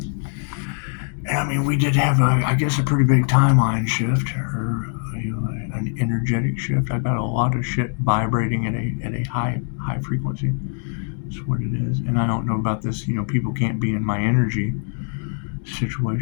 And I mean, we did have a pretty big timeline shift, or an energetic shift. I got a lot of shit vibrating at a high frequency. That's what it is. And I don't know about this, people can't be in my energy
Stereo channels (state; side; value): silent; right; 55 dB below the other